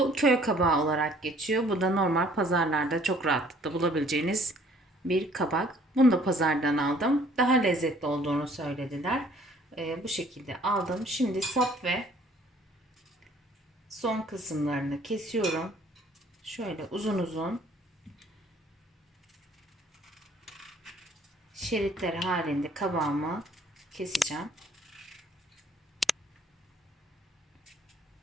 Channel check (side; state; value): both; normal; correlation 0.58